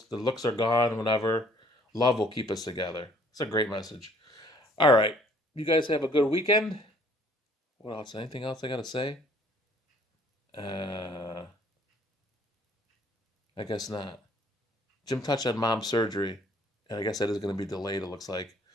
The looks are gone. Whatever. Love will keep us together. It's a great message. All right, you guys have a good weekend. What else? Anything else I gotta say? Uh, I guess not. Jim touched on mom's surgery, and I guess that is gonna be delayed. It looks like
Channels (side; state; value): both; normal; correlation 0.59